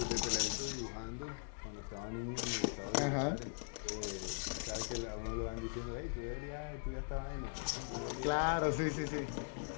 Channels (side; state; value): right; silent; digital silence